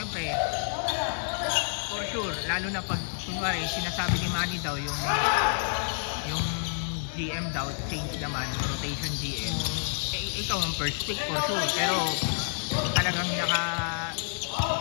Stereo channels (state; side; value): silent; right; digital silence